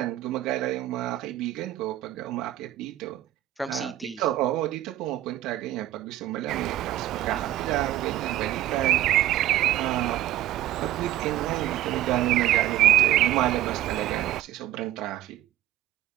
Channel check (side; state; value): left; quieter; 13.8 dB